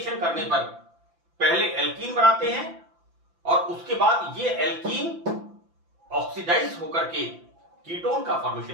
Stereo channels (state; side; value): late; left; 5.9 ms